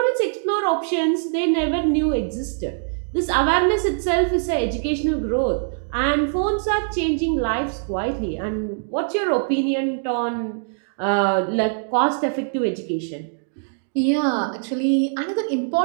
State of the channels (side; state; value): left; silent; digital silence